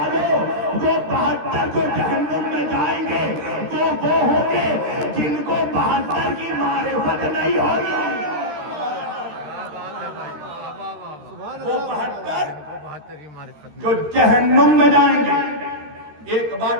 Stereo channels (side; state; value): left; late; 13 ms